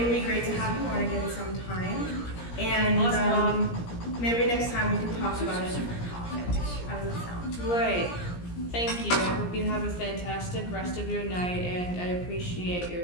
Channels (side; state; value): right; late; 17 ms